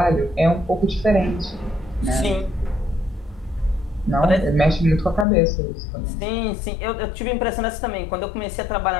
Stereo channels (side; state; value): right; drops out; at 5.2 s